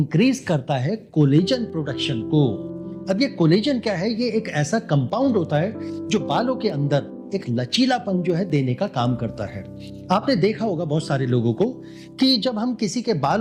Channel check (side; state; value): both; identical; correlation 1.00